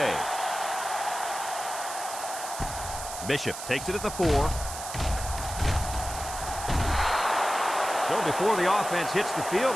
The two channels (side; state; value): right; noise; hiss, 9 dB below the sound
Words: Bishop takes it at the 4. So before the offense hits the